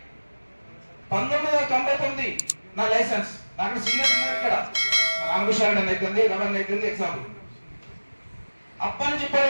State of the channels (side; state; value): both; inverted; correlation -1.00